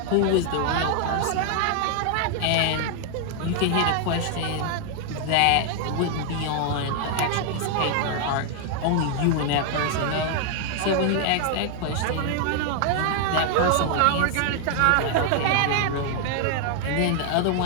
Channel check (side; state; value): both; different; correlation 0.00